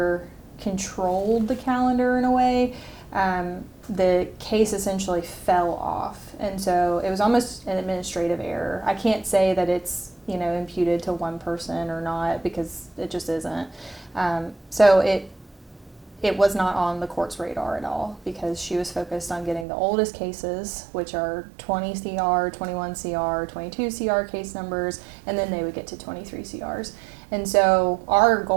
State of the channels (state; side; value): drops out; left; at 19.7 s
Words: controlled the calendar in a way, the case essentially fell off. And so it was almost an administrative error. I can't say that it's, imputed to one person or not, because it just isn't. So it was not on the court's radar at all, because she was focused on getting the oldest cases, which are 20 CR, 21 CR, 22 CR case numbers, and then they would get to 23 CRs. And so our